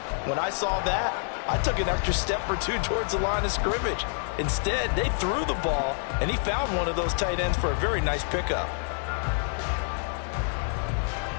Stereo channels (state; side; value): silent; right; 60 dB below the other